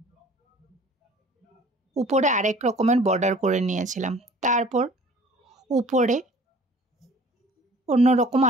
উপরে আরেক রকমের বর্ডার করে নিয়েছিলাম। তারপর উপরে অন্যরকম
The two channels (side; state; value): both; normal; correlation 0.49